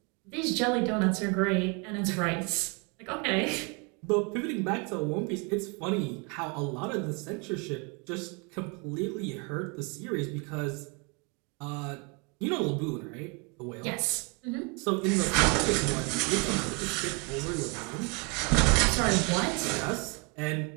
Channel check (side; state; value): left; quieter; 32.5 dB